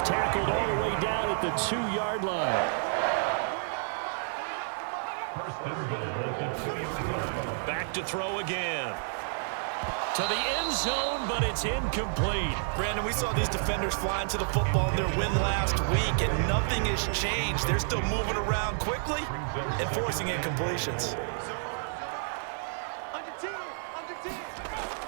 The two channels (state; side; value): silent; left; 58 dB below the other